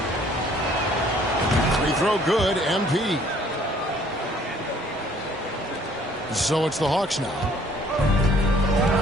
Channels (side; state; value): both; normal; correlation 0.58